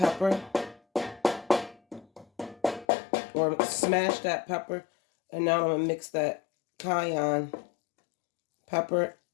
or smash that pepper, and now I'm gonna mix that cayenne pepper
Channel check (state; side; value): drops out; right; at 2.9 s